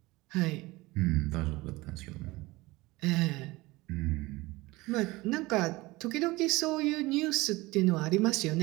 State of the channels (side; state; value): left; quieter; 21.1 dB